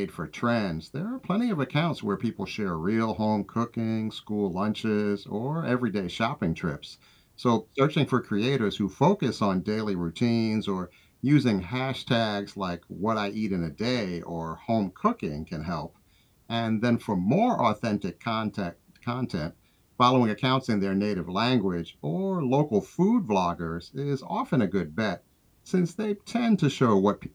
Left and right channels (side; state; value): both; identical; correlation 1.00